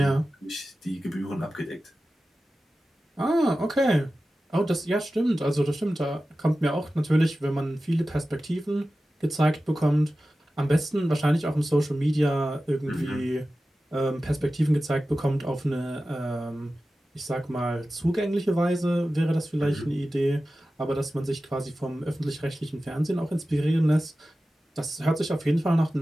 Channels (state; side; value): normal; both; correlation 0.94